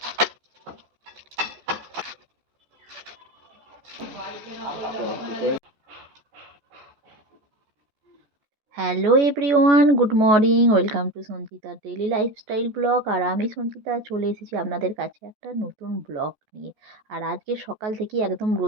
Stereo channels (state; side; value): late; left; 14 ms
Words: hello everyone, good morning, welcome to Sanchita daily lifestyle blog. আর আমি সঞ্চিতা চলে এসেছি আপনাদের কাছে একটা নতুন ব্লগ নিয়ে। আর আজকে সকাল থেকে একদম